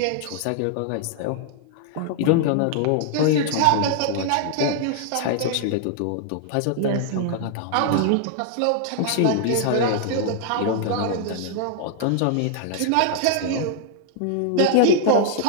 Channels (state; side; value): different; both; correlation 0.00